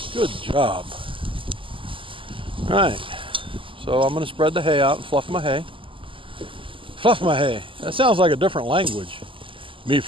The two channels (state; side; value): late; left; 0.25 ms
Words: Good job. All right, So I'm going to spread the hay out and fluff my hay. Fluff my hay. That sounds like a different language. Me